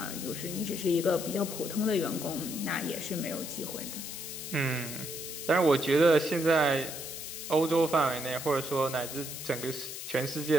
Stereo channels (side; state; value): left; noise; hiss, 8 dB below the sound